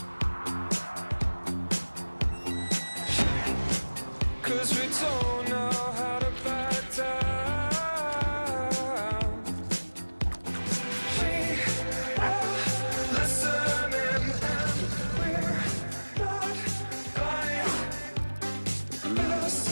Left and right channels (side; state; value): both; inverted; correlation -1.00